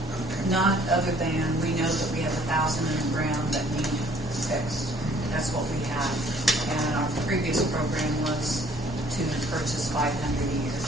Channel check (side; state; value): both; normal; correlation 0.59